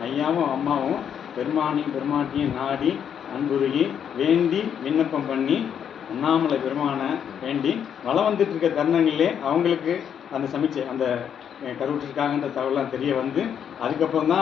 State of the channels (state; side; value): quieter; right; 8.4 dB